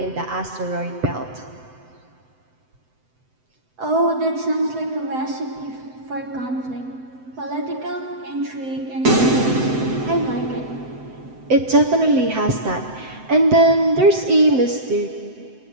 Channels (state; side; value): late; left; 7.8 ms